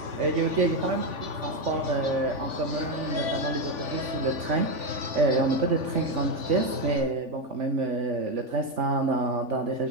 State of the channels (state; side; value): late; left; 3.5 ms